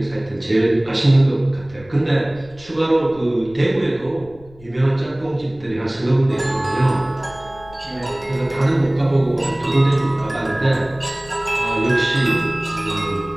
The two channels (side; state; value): left; noise; rumble, 23 dB below the sound